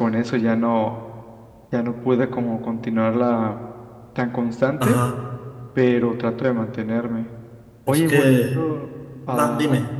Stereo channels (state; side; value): identical; both; correlation 1.00